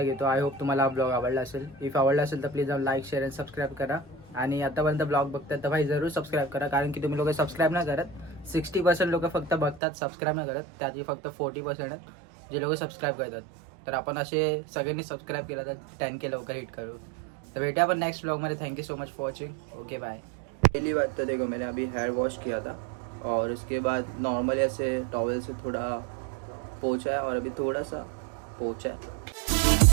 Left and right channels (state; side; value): drops out; left; at 9.8 s